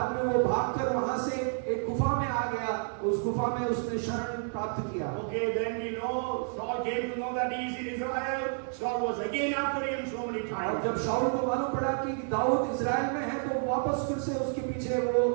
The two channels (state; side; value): silent; left; 58 dB below the other